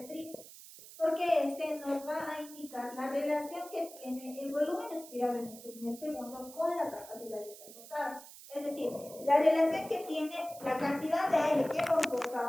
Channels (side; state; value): right; noise; hiss, 17 dB below the sound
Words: porque este nos va a indicar la relación que tiene el volumen expirado en el primer segundo con la capacidad de transportado. Es decir, la relación que tiene la cantidad de aire que hemos